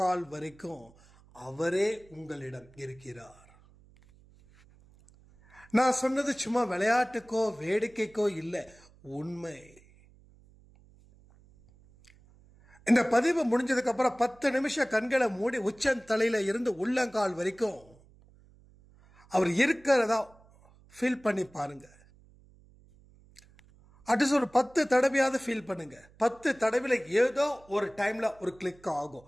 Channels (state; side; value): noise; right; hum, 27 dB below the sound